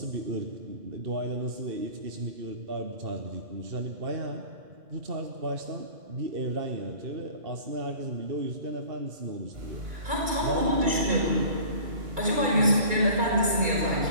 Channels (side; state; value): left; late; 2.3 ms